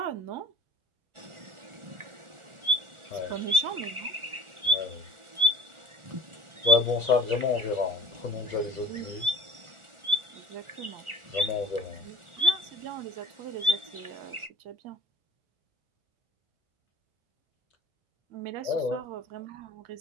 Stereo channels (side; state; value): left; late; 1.4 ms